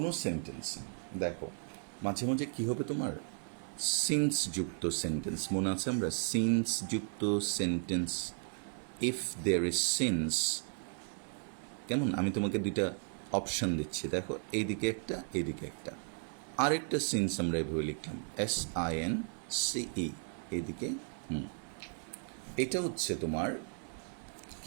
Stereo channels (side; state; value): left; silent; 54 dB below the other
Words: sentence দেখো মাঝে মাঝে কি হবে তোমার since যুক্ত সেন্টেন্স, মনে আছে আমরা সিন্স যুক্ত sentence, if there is since, কেমন আমি তোমাকে দুইটা অপশান দিচ্ছি, দেখো এইদিকে একটা এইদিকে একটা, আরেকটা সিন্স আমরা এভাবে লিখলাম SINCE, এইদিকে এটা হচ্ছে তোমার